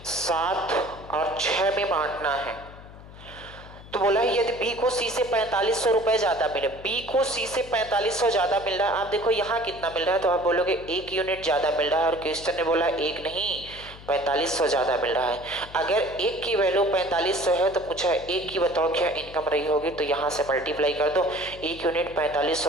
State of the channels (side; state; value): left; noise; hum, 18 dB below the sound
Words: 7 और 6 में बांटना है। तो बोला है यदि बी को सी से 4500 रुपए ज्यादा मिले, बी को सी से 4500 ज्यादा मिल रहा है। आप देखो यहाँ कितना मिल रहा है, तो आप बोलोगे 1 यूनिट ज्यादा मिल रहा है, और क्वेश्चन ने बोला 1 नहीं 4500 ज्यादा मिल रहा है। अगर 1 की वैल्यू 4500 है तो पूछा है 1 की बताओ क्या इनकम रही होगी, तो यहाँ से मल्टीप्लाई कर दो। 1 यूनिट